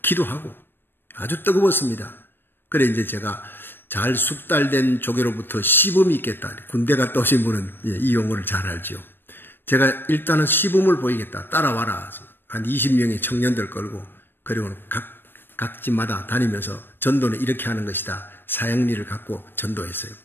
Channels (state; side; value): late; right; 0.097 ms